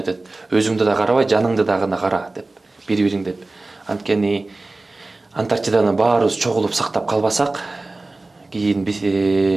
Өзүңдү да карабай, жаныңды да гана кара деп, бири-бириң деп. Анткени Антарктиданы баарыбыз чогулуп сактап калбасак, кийин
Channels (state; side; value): quieter; left; 3.1 dB